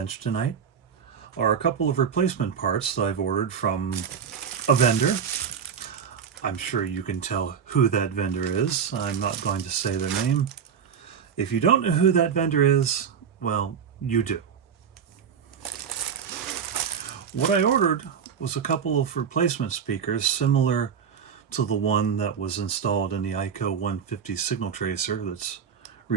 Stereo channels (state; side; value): quieter; left; 7.3 dB